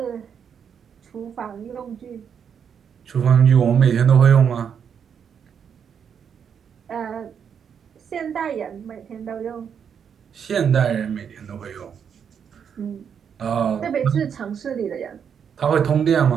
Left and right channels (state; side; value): quieter; left; 7.5 dB